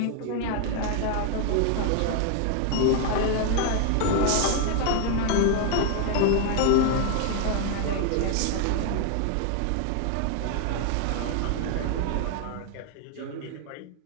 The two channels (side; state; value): both; different; correlation 0.00